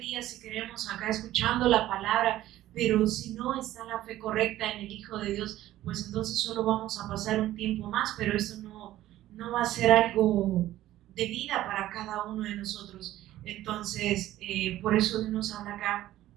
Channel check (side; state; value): left; quieter; 14.3 dB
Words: si queremos, acá escuchando la palabra, pero si no está la fe correcta en el Hijo de Dios, pues entonces solo vamos a pasar un tiempo más, pero eso no va a ser algo de vida para cada uno de nosotros. Entonces, por eso Dios nos habla acá